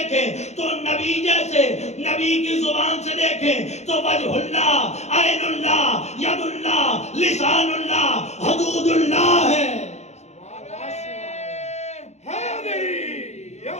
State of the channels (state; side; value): late; right; 0.32 ms